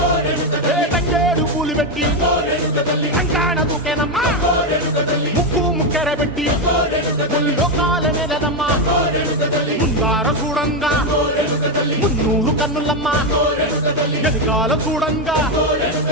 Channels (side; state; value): both; normal; correlation 0.08